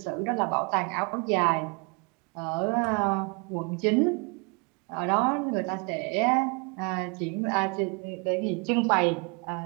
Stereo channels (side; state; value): left; quieter; 33.2 dB